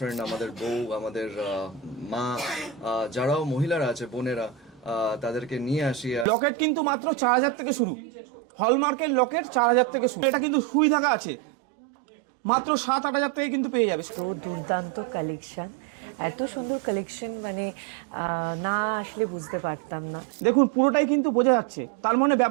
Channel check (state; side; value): drops out; left; at 6.2 s